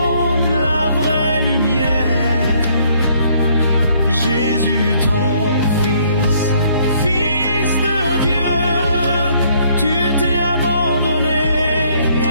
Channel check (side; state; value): both; inverted; correlation -0.65